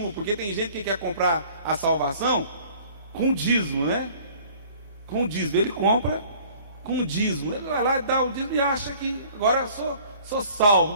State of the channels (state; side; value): inverted; both; correlation -0.52